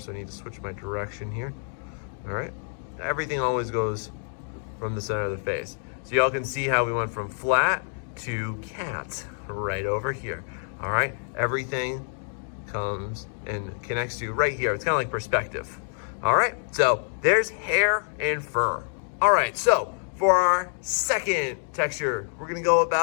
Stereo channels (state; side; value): silent; right; 60 dB below the other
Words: I need to switch my direction here. All right, everything always goes from the center of the face. So y'all can see how we went from flat to cat right over here. All right, everything comes and connects to right here. It's kind of like perspective. All right, so there's hair and fur. All right, so for our second texture, we're gonna go